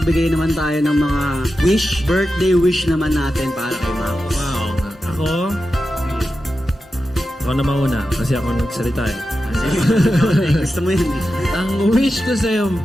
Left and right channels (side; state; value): both; normal; correlation 0.91